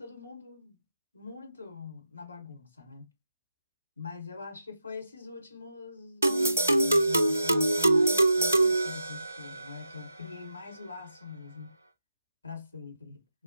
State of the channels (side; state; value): both; inverted; correlation -0.87